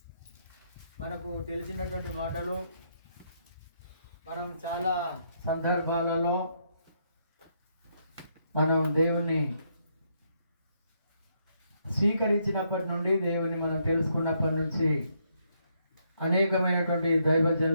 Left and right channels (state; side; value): inverted; both; correlation -0.75